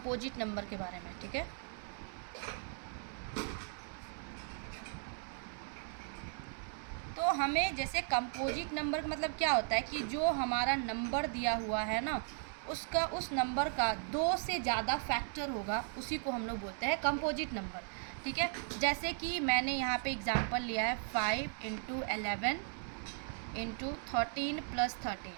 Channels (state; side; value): silent; left; 53 dB below the other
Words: नंबर के बारे में, ठीक है। तो हमें जैसे कंपोजिट नंबर का मतलब क्या होता है कि जो हमारा नंबर दिया हुआ है ना, उसका उस नंबर का 2 से ज़्यादा फैक्टर होगा, उसी को हम लोग बोलते हैं कंपोजिट नंबर, ठीक है। जैसे कि मैंने यहाँ पे एग्जांपल लिया है 5 × 11 × 13 + 13,